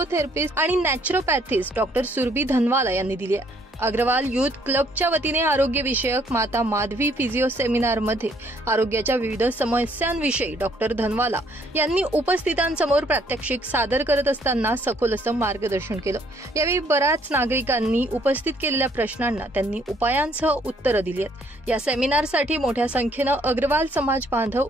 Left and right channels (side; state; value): both; normal; correlation 0.66